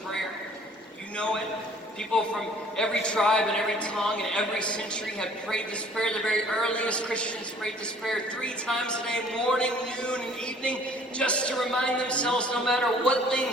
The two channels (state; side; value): normal; both; correlation 0.54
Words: prayer. You know it. People from every tribe and every tongue and every century have prayed this prayer. The very earliest Christians prayed this prayer 3 times a day, morning, noon, and evening, just to remind themselves, no matter what